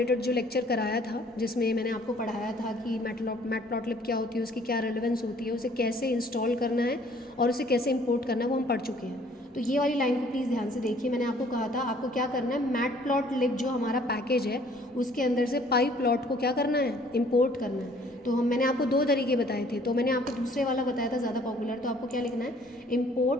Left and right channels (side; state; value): both; normal; correlation 0.58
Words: जो लेक्चर कराया था, जिसमें मैंने आपको पढ़ाया था कि मैटप्लॉटलिब क्या होती है, उसकी क्या रेलेवेंस होती है, उसे कैसे इंस्टॉल करना है और उसे कैसे इंपोर्ट करना है, वो हम पढ़ चुके हैं। तो ये वाली लाइन को प्लीज़ ध्यान से देखिए। मैंने आपको कहा था आपको क्या करना है, मैटप्लॉटलिब जो हमारा पैकेज है उसके अंदर से पाई प्लॉट को क्या करना है, इंपोर्ट करना है। तो मैंने आपको दो तरीके बताए थे। तो मैंने आपको दूसरे वाला बताया था ज़्यादा पॉपुलर। तो आपको क्या लिखना है,